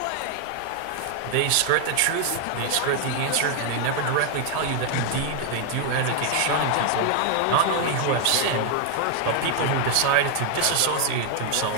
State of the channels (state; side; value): different; both; correlation 0.00